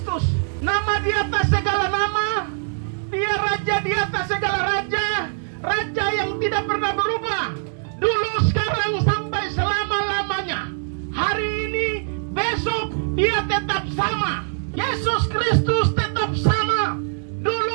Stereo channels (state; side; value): silent; left; digital silence